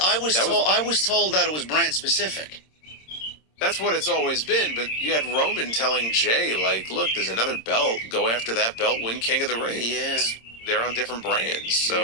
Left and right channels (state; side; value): late; right; 26 ms